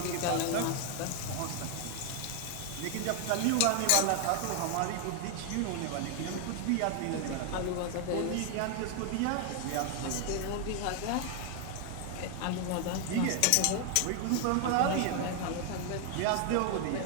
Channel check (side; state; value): both; different; correlation 0.00